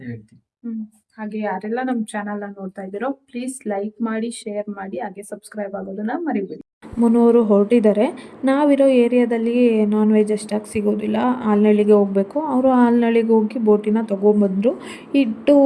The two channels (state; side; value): identical; both; correlation 1.00